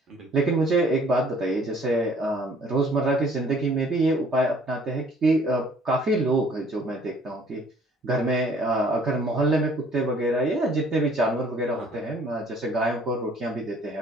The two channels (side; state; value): both; normal; correlation 0.57